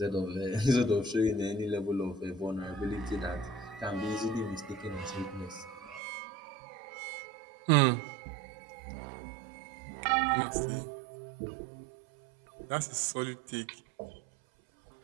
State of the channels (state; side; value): drops out; left; at 6.0 s